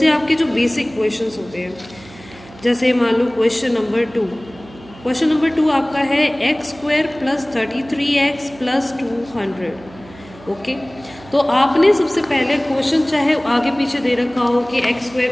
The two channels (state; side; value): noise; right; hum, 21 dB below the sound